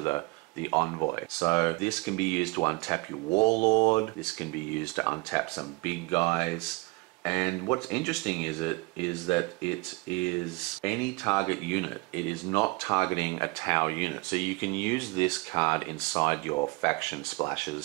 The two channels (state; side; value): quieter; left; 25.3 dB